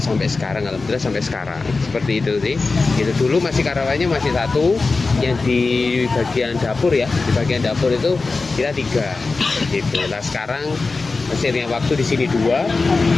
sampai sekarang, alhamdulillah sampai sekarang seperti itu sih. Itu dulu masih karyawannya masih 1 yang di bagian dapur ya, di bagian dapur itu kita 3 gitu. Nah sekarang seiring waktu di sini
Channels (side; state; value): right; quieter; 3.9 dB